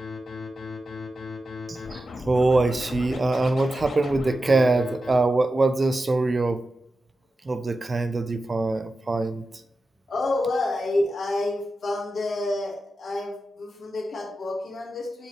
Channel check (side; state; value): both; normal; correlation 0.92